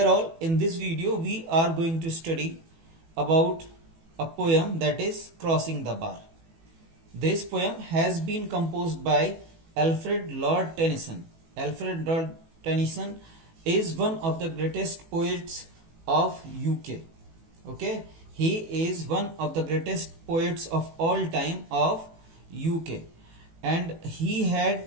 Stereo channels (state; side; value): late; left; 18 ms